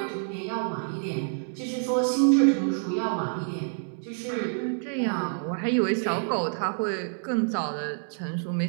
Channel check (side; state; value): left; silent; 60 dB below the other